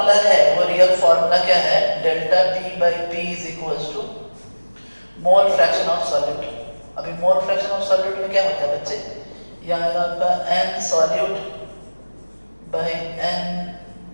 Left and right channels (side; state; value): both; inverted; correlation -1.00